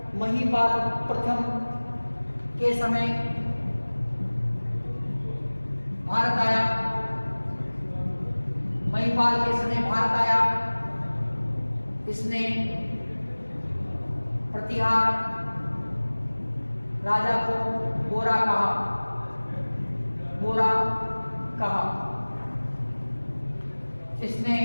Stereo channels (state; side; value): inverted; both; correlation -1.00